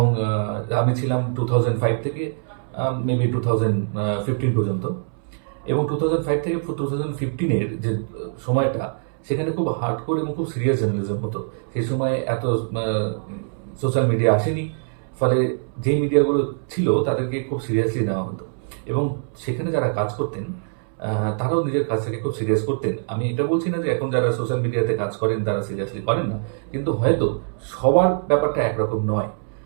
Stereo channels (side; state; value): left; silent; 63 dB below the other